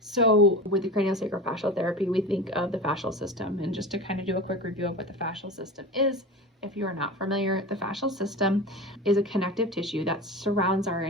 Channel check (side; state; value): both; normal; correlation 0.30